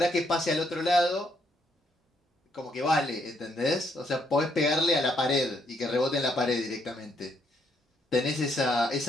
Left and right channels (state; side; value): normal; both; correlation 0.73